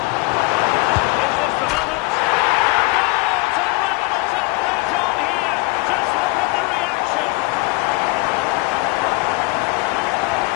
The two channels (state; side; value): quieter; right; 24.2 dB